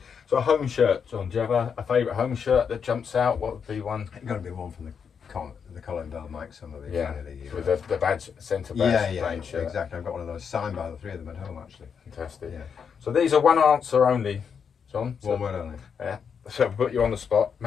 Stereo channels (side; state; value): right; quieter; 6.7 dB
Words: So a home shirt, John. Do you have a favourite home shirt that jumps out? What would be one? It's got to be one from the Colin Bell, Mike Summerby. Yeah, with the badge, centre badge, plain shirt. Exactly. I've got one of those signed by the three of them at home, actually. Fantastic. Yeah. So these are one answer only, John. So, One word only. Yeah. So I'll put you on the spot.